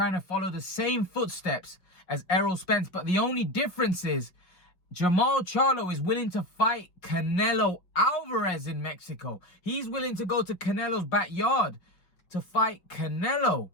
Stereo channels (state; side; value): late; right; 5.5 ms